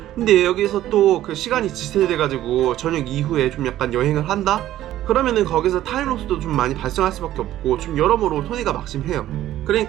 근데 여기서 또 그 시간이 지체돼가지고 저녁 이후에 좀 약간 여행을 한다? 그러면은 거기서 타임로스도 좀 많이 발생할 수밖에 없고 좀 여러모로 손해가 막심해요.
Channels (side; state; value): left; quieter; 13.4 dB